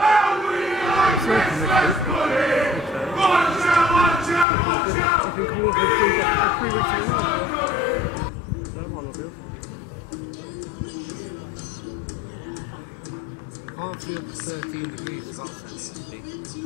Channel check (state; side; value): drops out; right; at 4.5 s